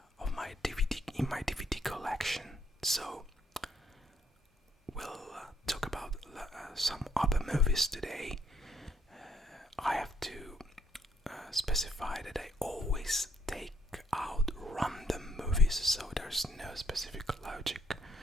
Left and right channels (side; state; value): both; normal; correlation 0.71